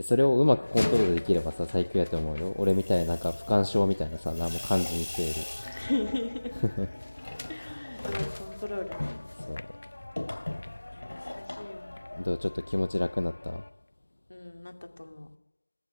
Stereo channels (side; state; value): both; inverted; correlation -1.00